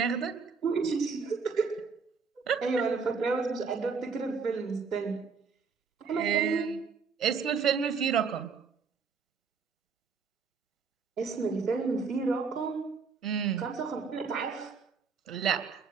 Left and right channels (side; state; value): left; quieter; 5.3 dB